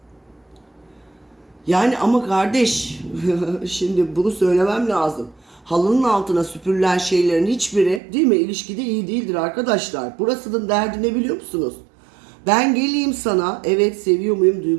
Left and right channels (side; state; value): left; drops out; at 8.0 s